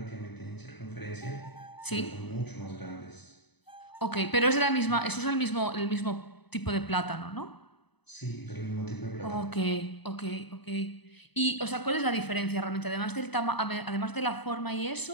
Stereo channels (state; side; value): late; right; 0.99 ms